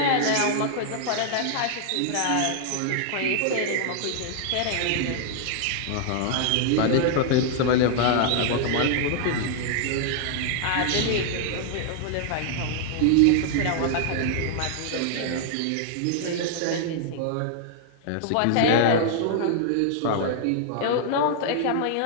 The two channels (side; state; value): both; different; correlation 0.00